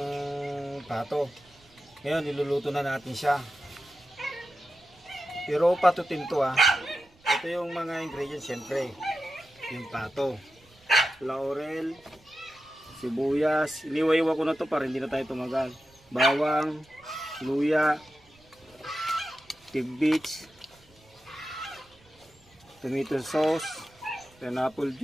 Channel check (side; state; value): right; noise; rumble, 29 dB below the sound